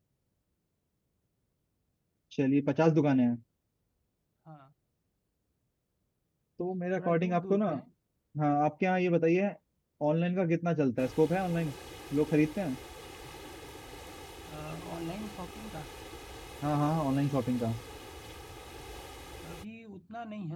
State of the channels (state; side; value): identical; both; correlation 1.00